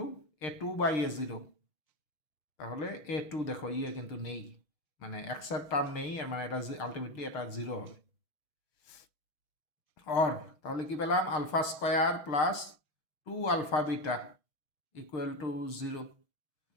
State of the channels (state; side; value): late; right; 6.2 ms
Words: A2 by A0, তাহলে A2 দেখো কিন্তু নেই, মানে এক্সের টার্ম নেই, আর মানে এটা আলটিমেটলি এটা 0 হবে। তাহলে কি পেলাম, alpha square plus 2 alpha beta equal to 0।